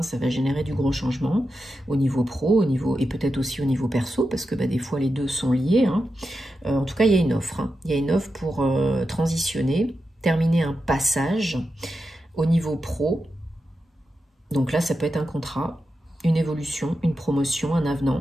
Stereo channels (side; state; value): both; normal; correlation 0.89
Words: ça va générer du gros changement au niveau pro, et peut-être aussi au niveau perso, parce que des fois, les deux sont liés. Hein. En tout cas, il y a une offre. Hein. Il y a une offre pour transitionner, terminer un passage au niveau pro. Donc là, ça peut être un contrat, une évolution, une promotion, un